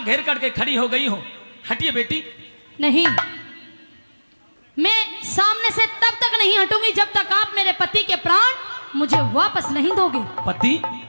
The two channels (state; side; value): inverted; both; correlation -1.00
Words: घेर करके खड़ी हो गई हो? हटिए बेटी। नहीं, मैं सामने से तब तक नहीं हटूंगी जब तक आप मेरे पति के प्राण मुझे वापस नहीं दोगे। पति?